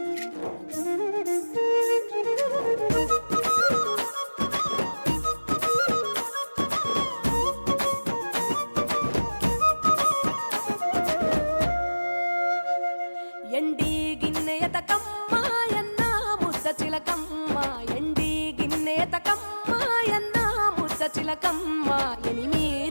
ఎండి గిన్నె ఎతకమ్మ ఎన్న ముద్ద చిలకమ్మ ఎండి గిన్నె ఎతకమ్మ ఎన్న ముద్ద చిలకమ్మ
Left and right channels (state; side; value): inverted; both; correlation -1.00